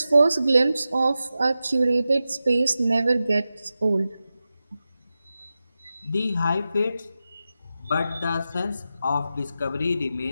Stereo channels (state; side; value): inverted; both; correlation -0.92